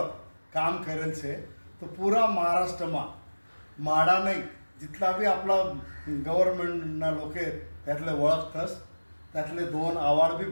काम करेल छे. तो पुरा महाराष्ट्रमा माडा नाही जिथला बी आपला गव्हर्नमेंटना लोक आहेत त्यातले ओळखतस. त्यातले 2 अवॉर्ड बी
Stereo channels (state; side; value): inverted; both; correlation -1.00